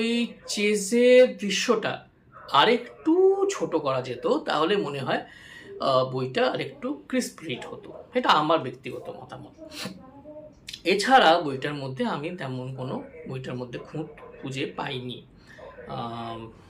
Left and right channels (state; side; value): identical; both; correlation 1.00